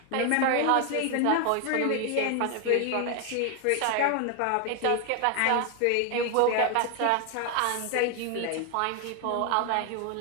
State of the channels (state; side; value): different; both; correlation 0.01